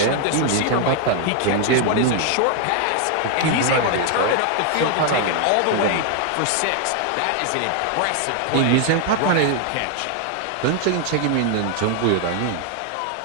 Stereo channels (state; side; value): different; both; correlation 0.00